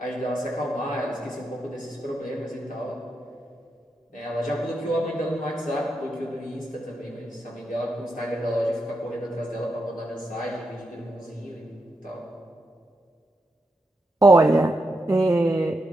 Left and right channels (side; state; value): both; normal; correlation 0.84